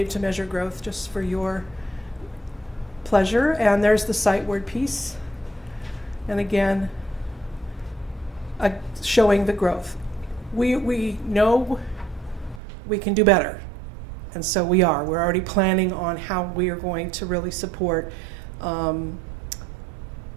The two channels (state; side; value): drops out; left; at 12.6 s